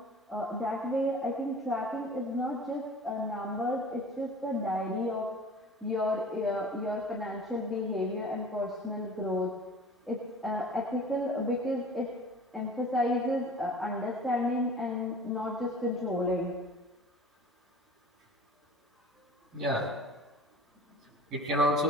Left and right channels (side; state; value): both; normal; correlation 0.43